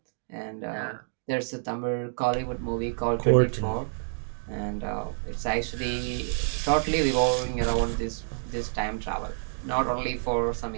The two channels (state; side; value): silent; left; digital silence